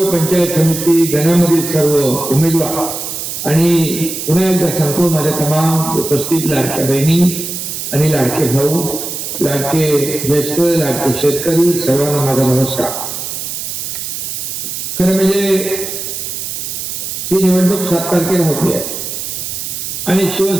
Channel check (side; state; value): right; noise; hiss, 6 dB below the sound